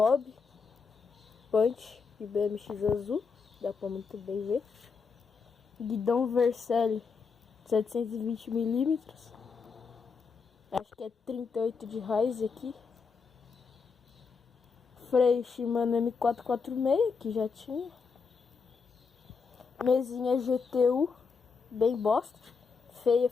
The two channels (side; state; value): right; quieter; 5.2 dB